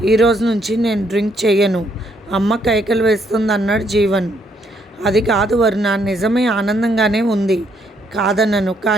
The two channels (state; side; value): normal; both; correlation 0.71